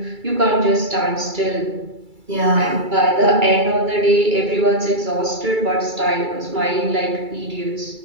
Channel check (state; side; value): late; left; 2.3 ms